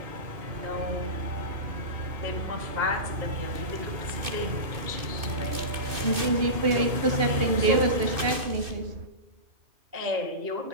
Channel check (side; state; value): left; late; 2.6 ms